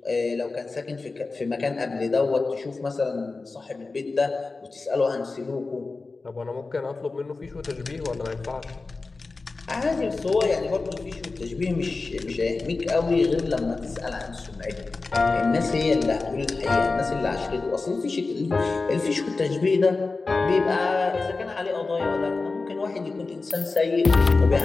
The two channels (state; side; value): quieter; right; 3.8 dB